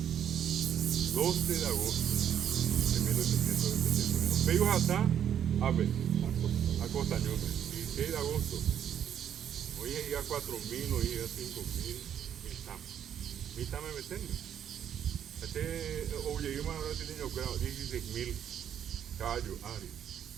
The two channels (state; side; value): quieter; left; 9.4 dB